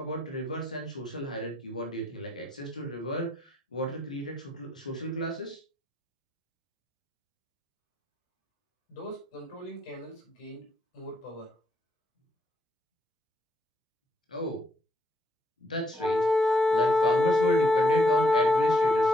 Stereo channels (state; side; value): normal; both; correlation 0.74